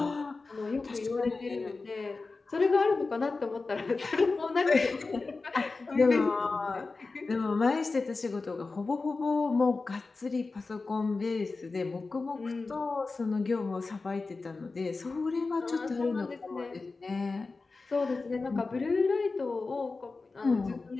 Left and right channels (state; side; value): quieter; right; 3.9 dB